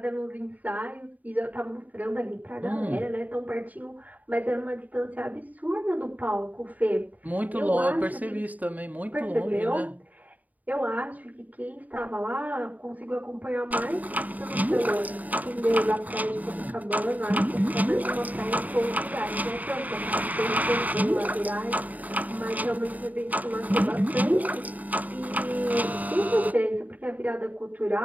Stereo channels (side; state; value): left; late; 0.076 ms